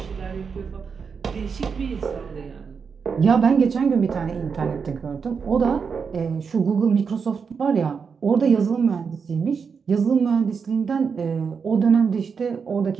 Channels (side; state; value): left; quieter; 5.9 dB